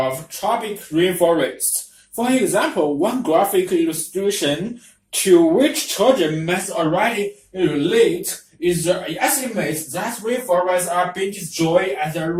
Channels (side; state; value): both; identical; correlation 1.00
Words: tropic rainforests. For example, one graphic illustration to which children must already relate is the estimate that rainforests are being destroyed at a